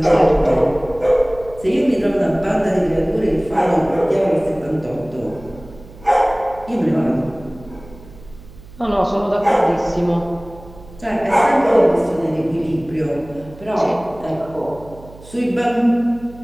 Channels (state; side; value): noise; right; hum, 20 dB below the sound